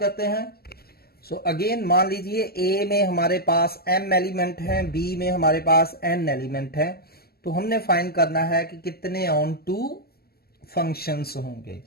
हैं। सो अगेन मान लीजिए A में हमारे पास m एलिमेंट है, B में हमारे पास n एलिमेंट है, तो हमने फाइंड करना है कि कितने ऑन टू फंक्शंस होंगे।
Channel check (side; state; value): right; late; 0.45 ms